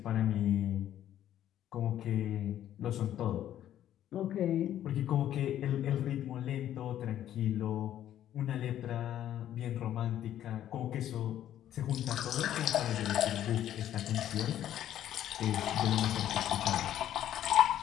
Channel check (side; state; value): right; quieter; 11.5 dB